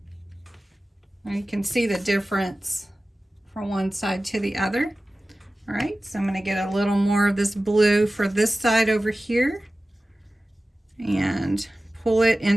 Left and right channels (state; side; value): normal; both; correlation 0.96